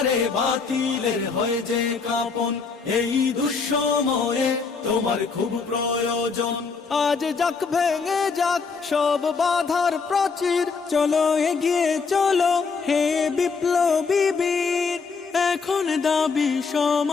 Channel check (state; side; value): quieter; right; 5.0 dB